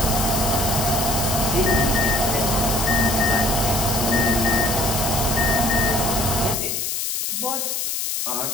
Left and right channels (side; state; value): left; noise; hiss, 1 dB below the sound